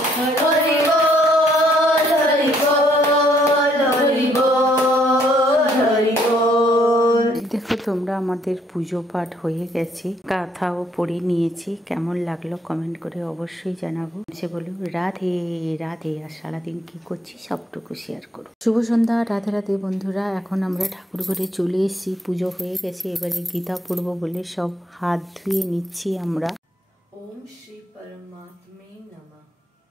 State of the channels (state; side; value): normal; both; correlation 0.69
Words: হরি বল হরি বল হরি বল হরি বল। দেখো তোমরা, আমাদের পুজো পাঠ হয়ে গেছে, কাথাও পড়ে নিয়েছি। কেমন লাগলো কমেন্ট করে অবশ্যই জানাবো। সে বলো রাধে রাধে, আর সারাদিন কি করছি সবটুকু শেয়ার করো। শুভ সন্ধ্যা, রাধে রাধে বন্ধুরা। এখন আমরা ঠাকুর ঘরে চলে এসেছি, পুজো হয়ে গেছে। এবারে গীতা পড়বো বলে সব হাত ধুয়ে নিচ্ছি আমরা। ओम श्री परमात्मे नमः।